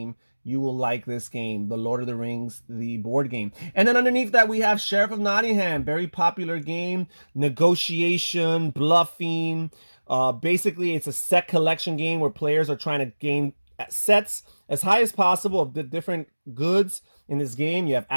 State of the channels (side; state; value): both; inverted; correlation -1.00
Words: you will like this game, The Lord of the Rings, the board game. And then underneath that, we have Sheriff of Nottingham, very popular game, negotiation, bluffing. Basically, it's a set collection game where players are trying to gain sets as high as possible of the different goods in this game. You have